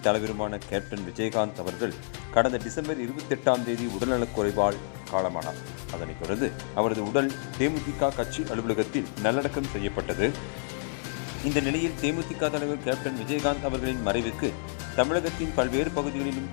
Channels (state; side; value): silent; right; digital silence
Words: தலைவருமான கேப்டன் விஜயகாந்த் அவர்கள் கடந்த டிசம்பர் 28 உடல்நலக் குறைவால் காலமானார். அதனைத் தொடர்ந்து அவரது உடல் தேமுதிக கட்சி அலுவலகத்தில் நல்லடக்கம் செய்யப்பட்டது. இந்த நிலையில் தேமுதிக தலைவர் கேப்டன் விஜயகாந்த் அவர்களின் மறைவுக்கு தமிழகத்தின் பல்வேறு பகுதிகளிலும்